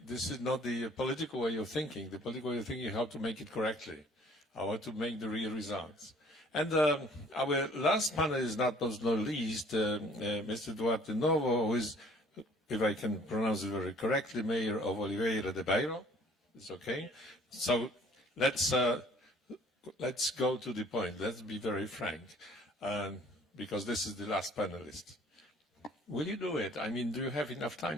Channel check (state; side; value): normal; both; correlation 0.55